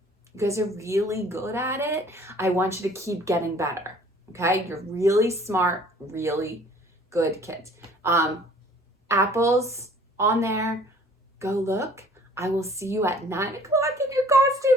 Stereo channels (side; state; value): both; normal; correlation 0.54